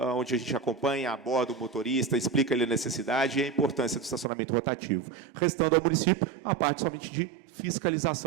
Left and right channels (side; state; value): left; drops out; at 4.2 s